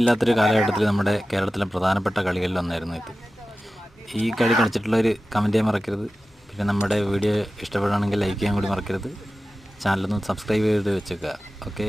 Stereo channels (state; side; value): normal; both; correlation 0.95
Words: കാലഘട്ടത്തിൽ നമ്മുടെ കേരളത്തിലെ പ്രധാനപ്പെട്ട കളികളിൽ ഒന്നായിരുന്നു ഇത്. ഈ കളി കളിച്ചിട്ടുള്ളവർ കമൻറ്റ് ചെയ്യാൻ മറക്കരുത്. പിന്നെ നമ്മുടെ വീഡിയോ ഇഷ്ടപ്പെടുകയാണെങ്കിൽ ലൈക്ക് ചെയ്യാൻ കൂടി മറക്കരുത്. ചാനലൊന്ന് സബ്സ്ക്രൈബ് ചെയ്ത് വെച്ചേക്കുക. ഓക്കെ,